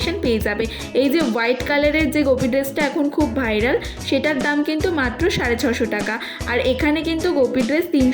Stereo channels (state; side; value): identical; both; correlation 1.00